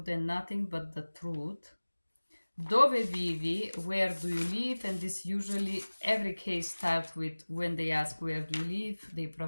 and nothing but the truth? Dove vivi? Where do you live? And this usually, every case starts with, when they ask where do you live, they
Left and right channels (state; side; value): inverted; both; correlation -1.00